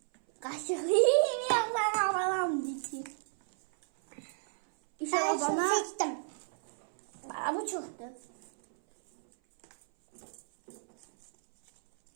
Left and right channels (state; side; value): silent; left; 56 dB below the other